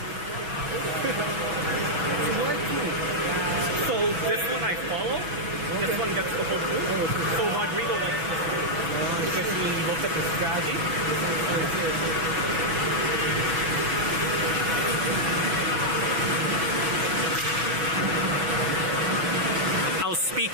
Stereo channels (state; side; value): late; left; 6.1 ms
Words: So this one I follow. This one gets the whole group. So Rodrigo likes this one because he looked at the strategy. I'll speak